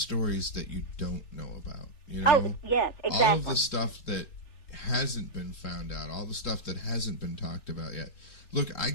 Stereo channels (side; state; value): right; late; 3.4 ms